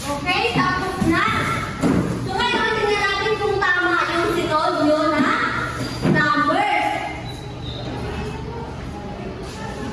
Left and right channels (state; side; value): identical; both; correlation 1.00